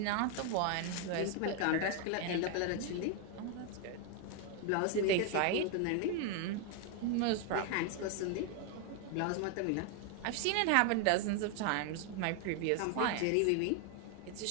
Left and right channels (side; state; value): both; different; correlation 0.01